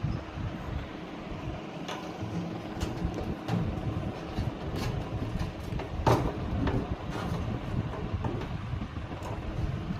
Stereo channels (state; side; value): identical; both; correlation 1.00